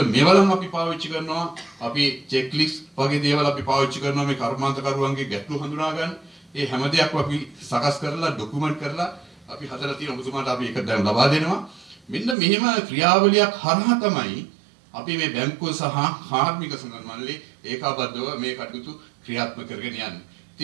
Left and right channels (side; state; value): left; drops out; at 12.4 s